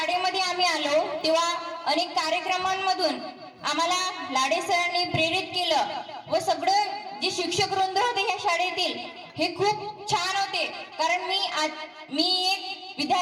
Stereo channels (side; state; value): both; identical; correlation 1.00